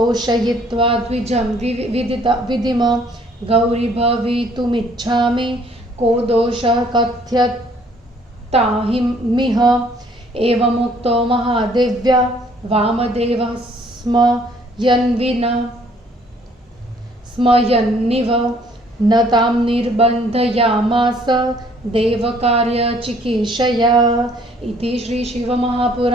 द्विजं विदिम गौरी भवितुमिच्छामि को दोषः कथ्यतामिह एवमुक्तो महादेव्या वामदेवः स्मयन्निव न तां निर्बन्धयामास देवकार्यचिकीर्षया इति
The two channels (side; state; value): both; normal; correlation 0.61